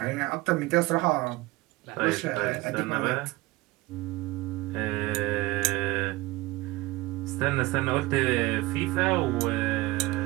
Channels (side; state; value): left; quieter; 20.9 dB